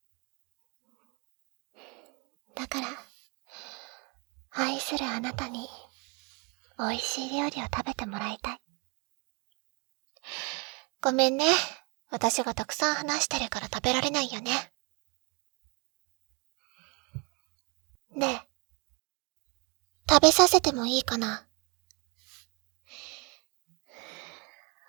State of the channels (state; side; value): quieter; left; 31.0 dB